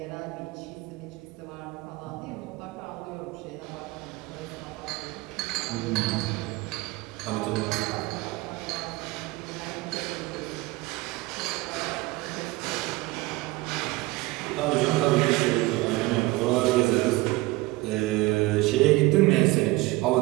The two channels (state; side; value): quieter; left; 20.8 dB